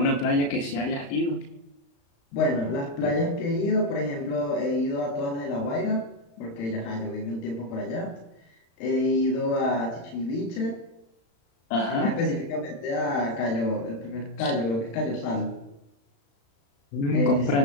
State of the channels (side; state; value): right; late; 35 ms